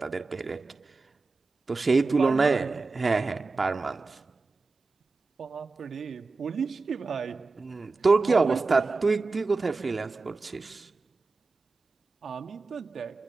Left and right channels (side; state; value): left; quieter; 3.8 dB